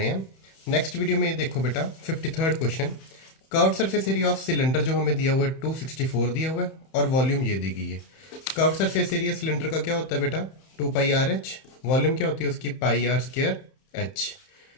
हैं। नेक्स्ट वीडियो में ये देखो बेटा 53rd question. Curved surface area of cylinder जो हमें दिया हुआ है 264 दिया हुआ है और वॉल्यूम ये दी गई है। कर्व्ड सरफेस एरिया सिलेंडर का क्या होता है बेटा 2 पाई आर एच। वॉल्यूम क्या होती है उसकी पाई आर स्क्वायर एच।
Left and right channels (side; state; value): right; late; 31 ms